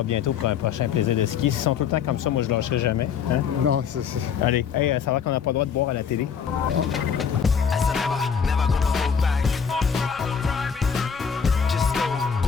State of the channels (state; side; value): quieter; right; 6.9 dB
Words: bientôt pour un prochain Plaisir de skier. S'ils sont tout le temps comme ça, moi, je lâcherai jamais. Hein? Non, c'est... Allez, hey, ça va qu'on n'a pas le droit de boire à la télé. As I never gonna hold back. Just go